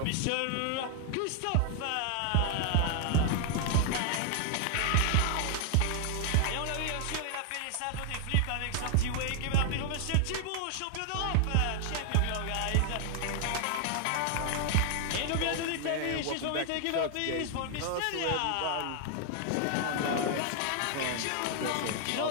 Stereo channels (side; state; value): both; different; correlation 0.00